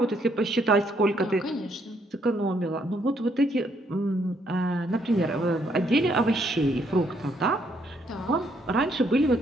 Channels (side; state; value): both; normal; correlation 0.71